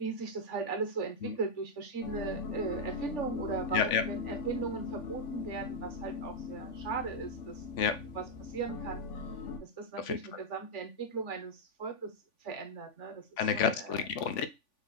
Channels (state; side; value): late; right; 3.5 ms